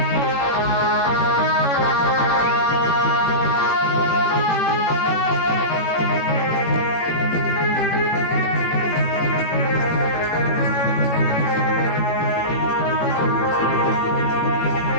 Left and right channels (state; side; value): late; right; 18 ms